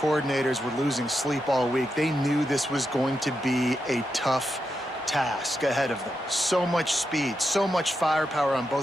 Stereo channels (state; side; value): normal; both; correlation 0.86